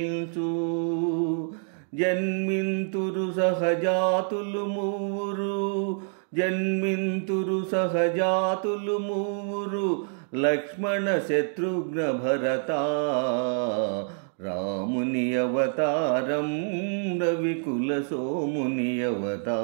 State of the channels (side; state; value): left; silent; 60 dB below the other